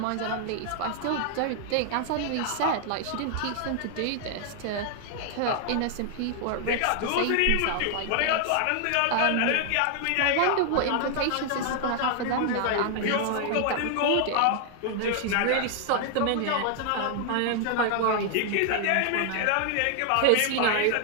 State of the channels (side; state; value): both; different; correlation 0.00